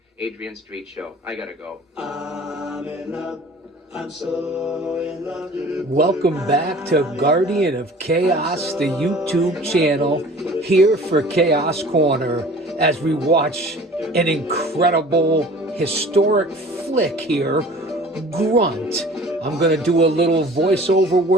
Adrian Street Show. I gotta go. I'm in love. I'm so in love. Welcome back to Guardian of Chaos, the YouTube channel, here for Chaos Corner, as we watch an incredible, historic flick here, Grunt. I'm going to do a little voiceover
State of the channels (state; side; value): normal; both; correlation 0.45